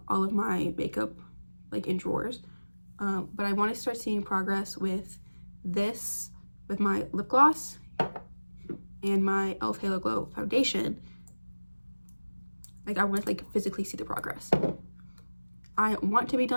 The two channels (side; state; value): both; inverted; correlation -1.00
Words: all of my makeup like in drawers, but I want to start seeing progress with this, with my lip gloss and my e.l.f. Halo Glow foundation. Like I want to like physically see the progress. I want to be